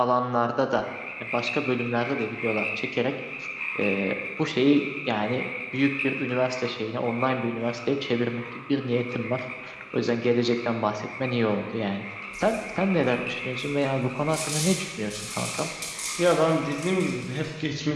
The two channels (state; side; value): identical; both; correlation 1.00